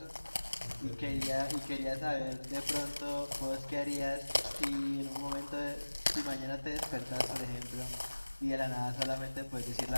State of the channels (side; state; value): both; inverted; correlation -1.00